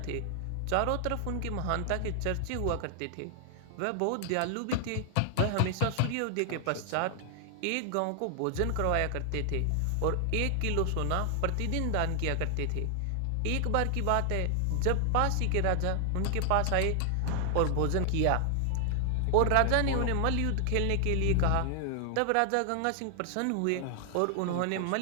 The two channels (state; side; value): different; both; correlation 0.00